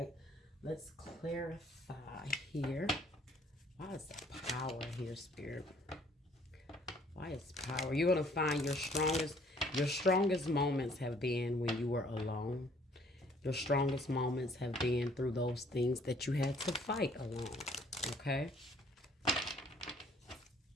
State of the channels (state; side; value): normal; both; correlation 0.60